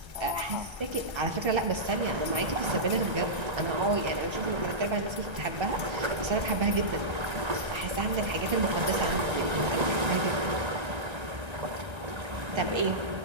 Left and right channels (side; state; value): left; late; 1.3 ms